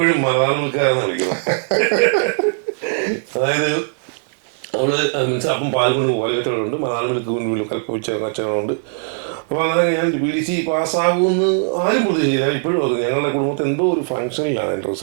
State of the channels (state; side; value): silent; left; 66 dB below the other